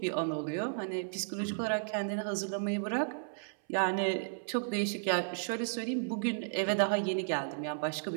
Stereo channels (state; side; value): silent; left; 55 dB below the other